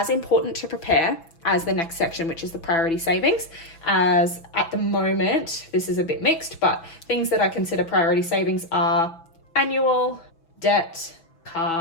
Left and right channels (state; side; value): late; right; 6.1 ms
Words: important to prepare as the next section, which is the priority savings, as at the moment, this is a bit mixed, but things that I consider priority savings are annual, debt,